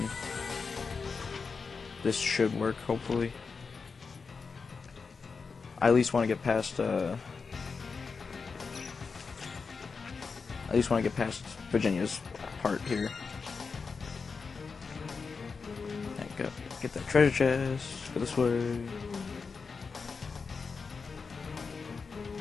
this should work, hopefully. I at least want to get past, Virginia's part here. Get that treasure chest, go this way.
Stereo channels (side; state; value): right; quieter; 5.0 dB